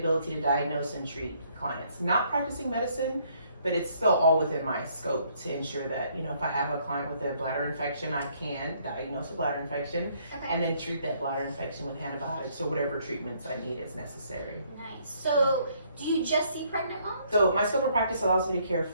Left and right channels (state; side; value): inverted; both; correlation -0.66